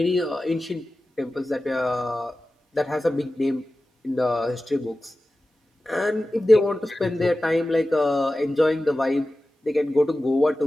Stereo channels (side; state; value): both; normal; correlation 0.95